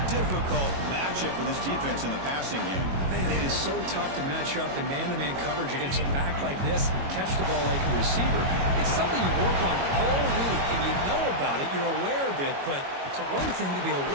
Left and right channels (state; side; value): late; left; 22 ms